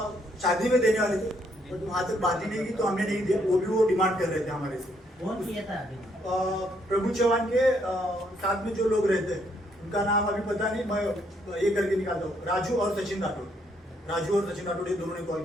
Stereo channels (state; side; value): normal; both; correlation 0.71